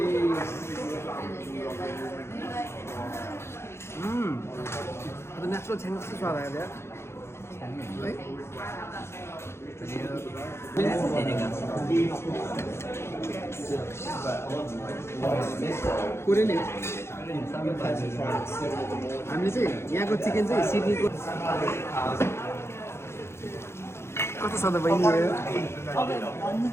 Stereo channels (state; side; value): late; right; 0.12 ms